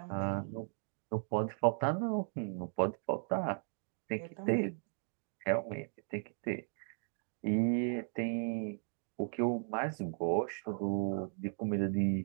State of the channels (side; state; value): left; silent; 53 dB below the other